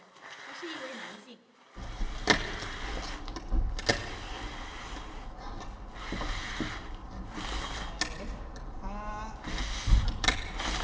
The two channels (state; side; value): identical; both; correlation 1.00